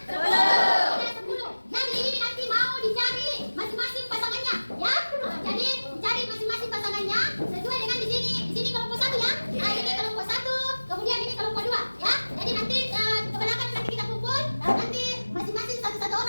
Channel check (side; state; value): both; inverted; correlation -1.00